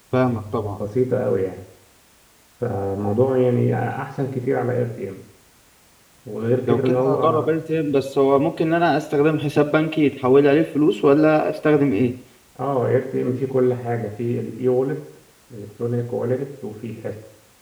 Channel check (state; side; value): identical; both; correlation 1.00